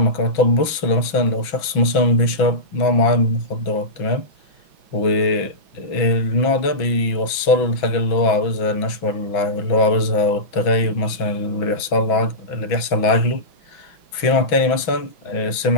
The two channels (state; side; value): late; right; 6.1 ms